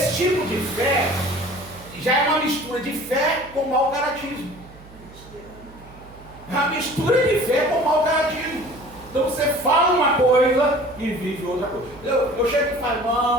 tipo de fé já é uma mistura de fé com mau caratismo. É uma mistura de fé com mau caratismo. Então você fala uma coisa e vive outra coisa. Eu chego e falo:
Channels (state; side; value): noise; right; hum, 21 dB below the sound